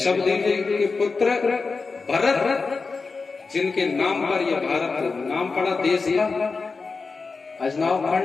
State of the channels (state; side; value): quieter; right; 4.4 dB